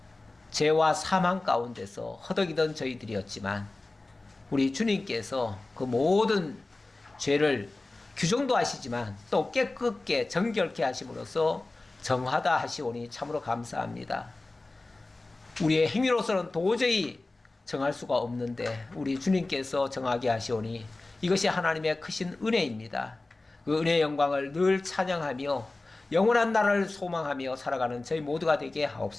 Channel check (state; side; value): quieter; right; 3.1 dB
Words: 죄와 사망 가운데서 허덕이던 저희들이었지만 우리 주님께서 그 모든 죄를 규정도 하시지만 또 깨끗게 정결케 하심으로써 정하다 하시오니 참으로 감사합니다. 우리의 행위로서는 도저히 정할 수가 없는데 우리 주님께서 정하게 하시오니 이것이 하나님의 크신 은혜입니다. 그 은혜의 영광을 늘 찬양하며 영원한 나라를 소망하며 살아가는 저희 모두가 되게